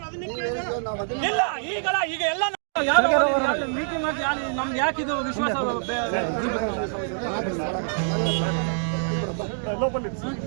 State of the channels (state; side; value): silent; left; digital silence